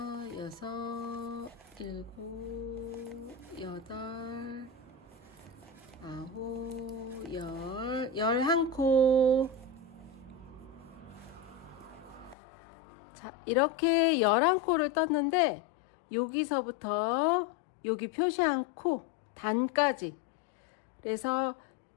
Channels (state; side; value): drops out; right; at 12.4 s